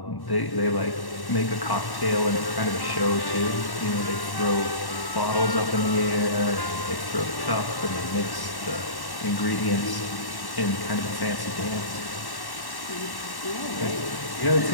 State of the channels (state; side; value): late; right; 1.1 ms